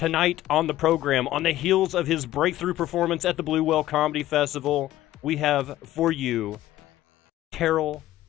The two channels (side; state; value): right; quieter; 14.6 dB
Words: on the program, on the heels of his breakthrough performance at the Blue Whale Comedy Festival, we have for you Terrell,